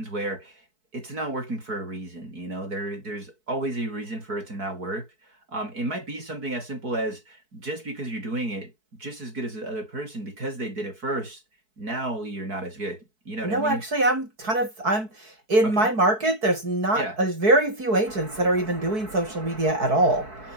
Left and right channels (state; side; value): late; left; 4.6 ms